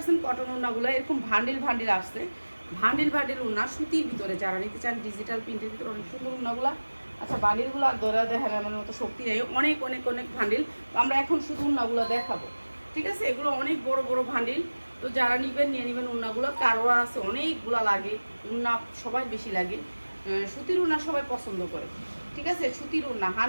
কটন উন্নাগুলো। এরকম ভান্ডিল ভান্ডিল আসছে, ভান্ডিল ভান্ডিল উন্না সুতির ভিতরে যারা নিতে চান, ডিজিটাল প্রিন্টের ভিতরে অনেক সুন্দর উন্নাগুলো। আচ্ছা, বান্ডিলগুলো ধরা দেখার আমার মতো শক্তি নেই, অনেক অনেক অনেক ভান্ডিল। আমরা এখন শুধু উন্নাগুলো দেখাবো, ঠিক আছে? এগুলো অনেক বড় বড় ভান্ডিল, তো যারা নিবেন নিয়ে নেবেন উন্নাগুলো। কারো আছে অনেকগুলো লাগে উন্না, সবাই বেশি লাগে সুতির উন্না, সবাই পছন্দ করে, ঠিক আছে? সুতির উন্না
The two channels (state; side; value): inverted; both; correlation -1.00